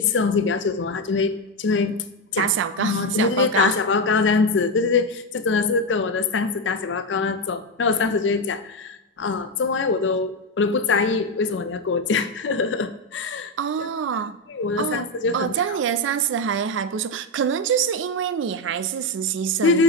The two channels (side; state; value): both; normal; correlation 0.09